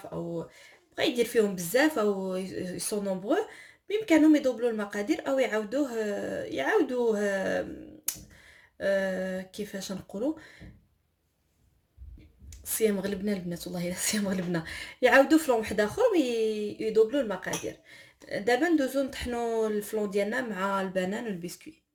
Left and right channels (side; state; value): both; identical; correlation 1.00